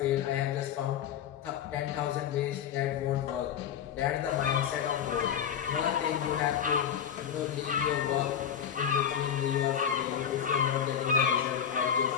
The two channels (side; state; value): right; quieter; 8.7 dB